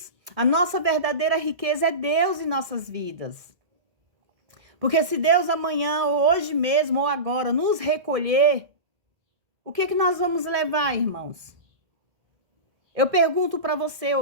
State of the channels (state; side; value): late; left; 1.7 ms